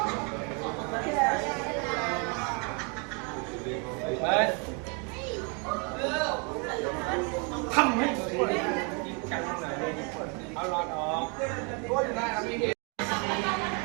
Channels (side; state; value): left; quieter; 34.8 dB